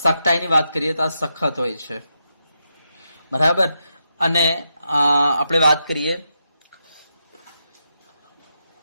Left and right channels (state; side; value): inverted; both; correlation -0.84